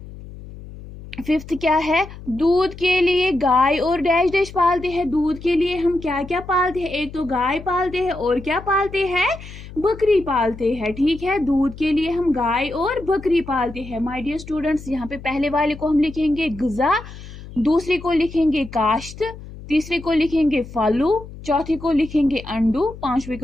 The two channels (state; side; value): noise; left; hum, 15 dB below the sound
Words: फिफ्थ क्या है? दूध के लिए गाय और डैश डैश पालते हैं। दूध के लिए हम क्या क्या पालते हैं? एक तो गाय पालते हैं और क्या पालते हैं? बकरी पालते हैं। ठीक है, दूध के लिए हम गाय और बकरी पालते हैं। माय डियर स्टूडेंट्स, यहाँ पे पहले वाले को हम लिखेंगे ग़िज़ा, दूसरे को लिखेंगे काश्त, तीसरे को लिखेंगे फलू, चौथे को लिखेंगे अंडू, पांचवे